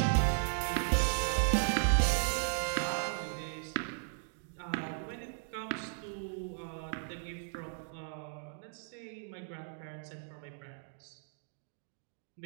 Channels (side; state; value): left; silent; digital silence